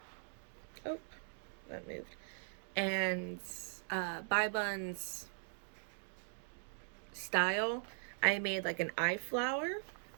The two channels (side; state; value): left; silent; digital silence